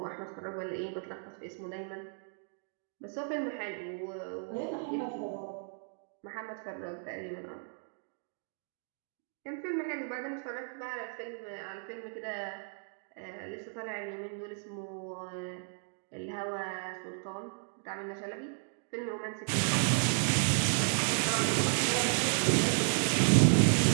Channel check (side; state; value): left; silent; 55 dB below the other